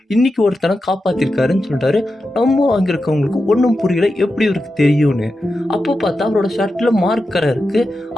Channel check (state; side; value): normal; both; correlation 0.90